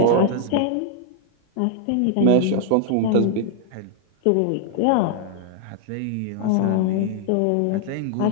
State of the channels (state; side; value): different; both; correlation -0.01